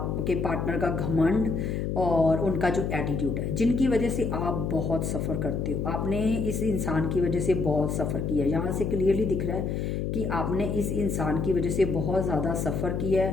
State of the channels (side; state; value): left; noise; hum, 1 dB below the sound